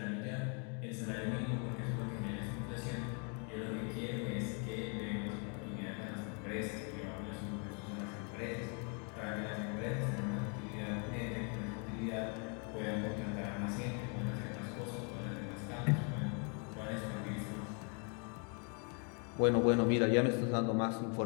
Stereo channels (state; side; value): quieter; right; 38.4 dB